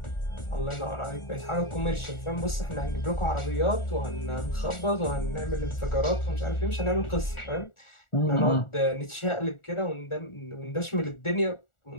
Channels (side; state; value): right; late; 1.4 ms